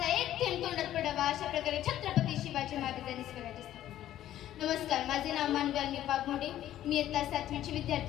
एक थेंब तोंडात पडावा. अशा प्रकारे छत्रपती शिवाजी महाराजांनी स्वराज्य स्थापन. नमस्कार, माझे नाव मानवी पागमोडे. मी इयत्ता 7वीची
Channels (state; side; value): quieter; right; 12.6 dB